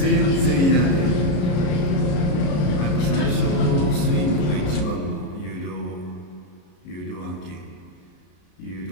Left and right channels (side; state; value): right; late; 33 ms